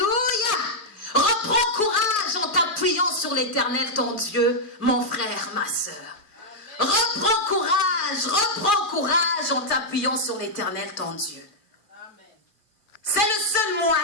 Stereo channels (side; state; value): right; late; 2.4 ms